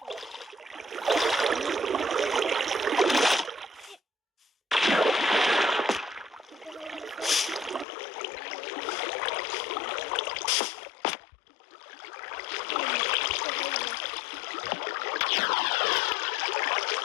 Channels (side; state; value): right; drops out; at 7.9 s